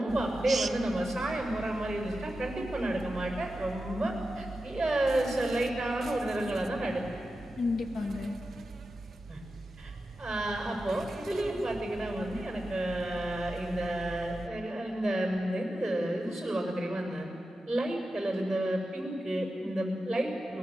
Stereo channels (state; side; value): normal; both; correlation 0.91